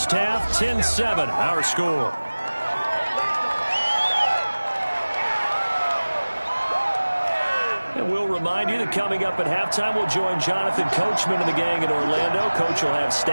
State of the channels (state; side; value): inverted; both; correlation -1.00